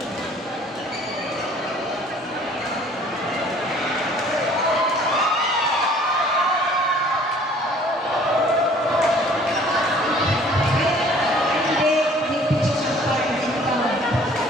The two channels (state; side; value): normal; both; correlation 0.54